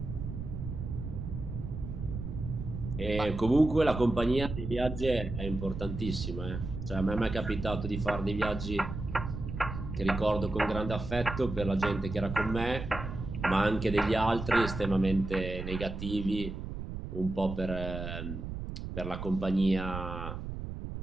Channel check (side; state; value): right; noise; rumble, 6 dB below the sound